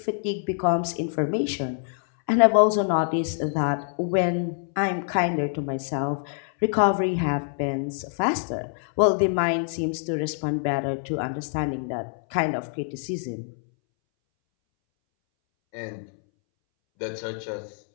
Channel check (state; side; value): silent; right; 61 dB below the other